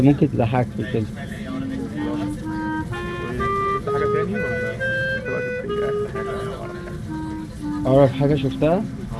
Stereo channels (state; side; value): identical; both; correlation 1.00